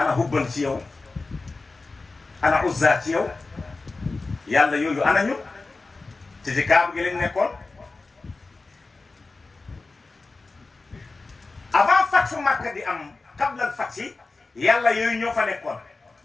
hubban ci yow ana uzza ci yow yàlla yooyu ana ñu te ci kaaba gi lañ nekkoon avant fatfu Makka di am qablal fathi yàlla yooyu ñoo fa nekkoon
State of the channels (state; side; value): quieter; right; 3.6 dB